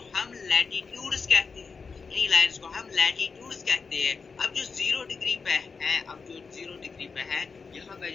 लैटिट्यूड्स कहते हैं, अब जो 0 डिग्री पे है, यहाँ पे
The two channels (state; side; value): quieter; right; 5.0 dB